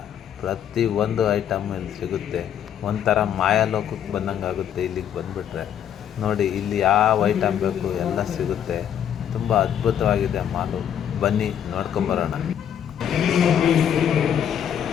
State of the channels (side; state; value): right; quieter; 9.4 dB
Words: ಪ್ರತಿಯೊಂದು ಐಟಮ್ ಇಲ್ಲಿ ಸಿಗುತ್ತೆ. ಒಂಥರ ಮಾಯಾಲೋಕಕ್ಕೆ ಬಂದಂಗೆ ಆಗುತ್ತೆ ಇಲ್ಲಿಗೆ ಬಂದುಬಿಟ್ರೆ. ನೋಡಿ ಇಲ್ಲಿ ಯಾವ ಐಟಮ್ ಬೇಕು ಎಲ್ಲ ಸಿಗುತ್ತೆ. ತುಂಬ ಅದ್ಭುತವಾಗಿದೆ ಮಾಲು. ಬನ್ನಿ ನೋಡ್ಕೊಂಬರೋಣ.